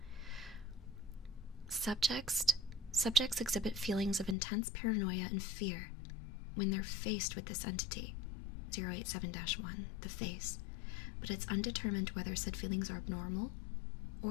Subjects exhibit feelings of intense paranoia and fear when they're faced with this entity, 087-1, the face, but it's undetermined whether said feelings are abnormal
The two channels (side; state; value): right; drops out; at 4.4 s